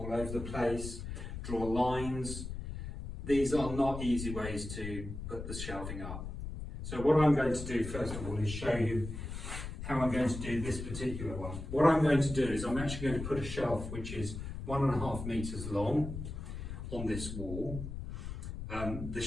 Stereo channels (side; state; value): left; noise; rumble, 7 dB below the sound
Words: over the place, draw lines. These are not easy ways to put the shelving up. So what I'm going to do first of all is show you how I'm going to do this particular one. What I'm going to do is I'm actually going to put a shelf which is 1.5 meters long on this wall. The